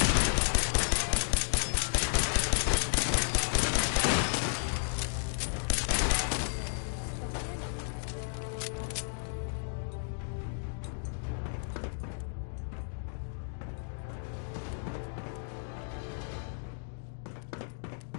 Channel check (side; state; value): right; silent; digital silence